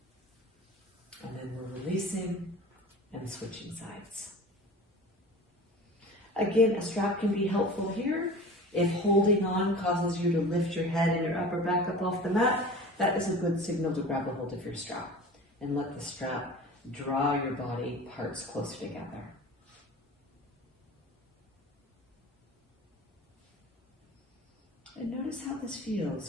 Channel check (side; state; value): both; normal; correlation 0.38